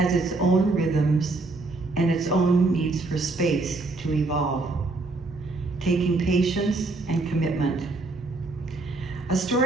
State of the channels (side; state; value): left; quieter; 3.3 dB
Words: its own rhythms and its own needs for space to evolve, taking patience and commitment. A